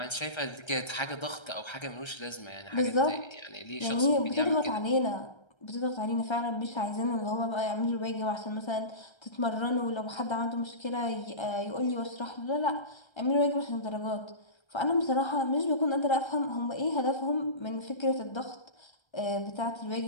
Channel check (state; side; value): late; right; 1.3 ms